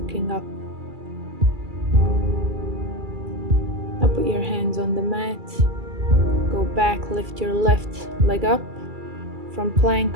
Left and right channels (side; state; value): left; late; 2.3 ms